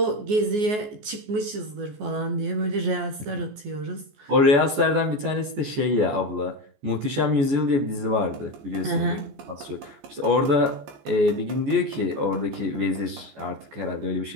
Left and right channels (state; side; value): late; left; 14 ms